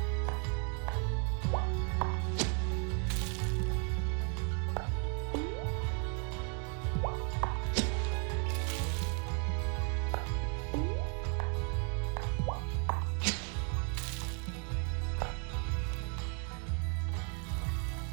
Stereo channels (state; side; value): quieter; left; 37.1 dB